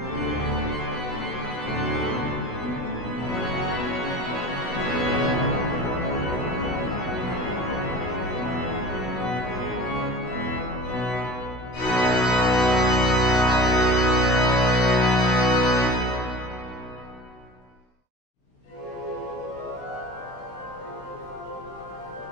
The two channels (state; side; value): late; right; 16 ms